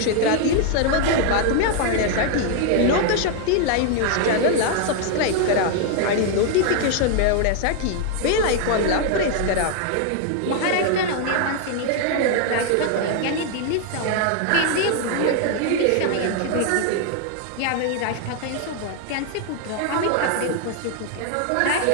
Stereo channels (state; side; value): different; both; correlation 0.00